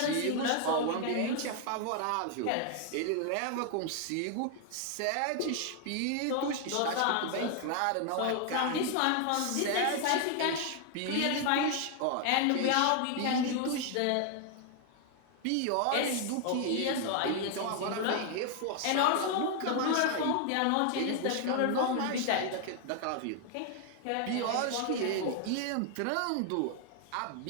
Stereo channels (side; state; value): both; different; correlation 0.00